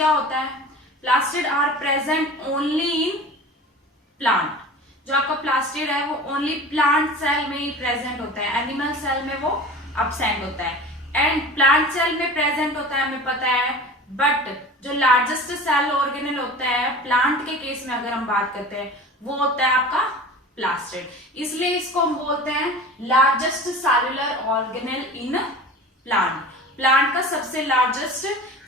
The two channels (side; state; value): both; normal; correlation 0.37